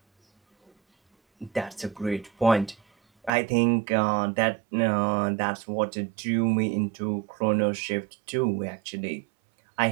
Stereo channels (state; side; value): drops out; left; at 3.3 s